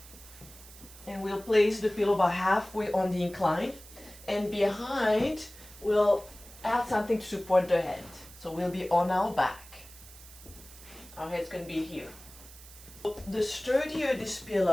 And we'll place the pillow about halfway on the incline, and behind we'll add something to support the head. So we'll be on our back. Our head's going to be here. The sturdier this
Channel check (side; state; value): right; noise; hiss, 19 dB below the sound